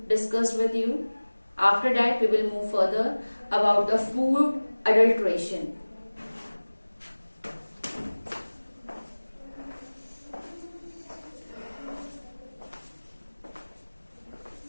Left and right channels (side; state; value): both; inverted; correlation -1.00